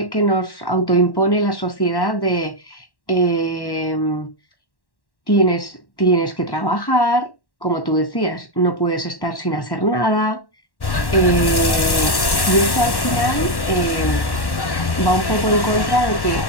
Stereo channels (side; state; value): right; late; 1.1 ms